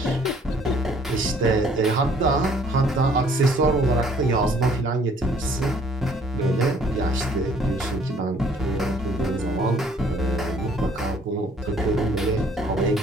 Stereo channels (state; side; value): normal; both; correlation 0.59